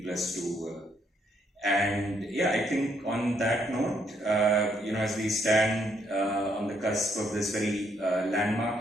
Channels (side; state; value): both; normal; correlation 0.73